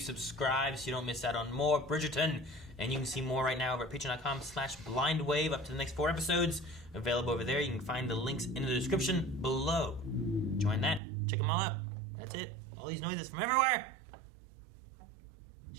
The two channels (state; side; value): drops out; left; at 11.0 s